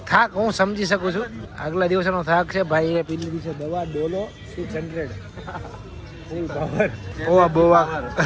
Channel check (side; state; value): both; identical; correlation 1.00